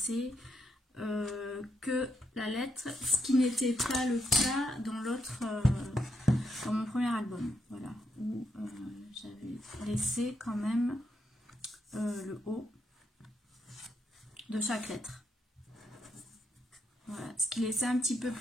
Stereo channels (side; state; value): both; normal; correlation 0.78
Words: que la lettre, ce qui n'était pas le cas dans l'autre, dans mon premier album. Voilà, où j'avais laissé quand même le haut de chaque lettre. Voilà, ce qui laissait un petit peu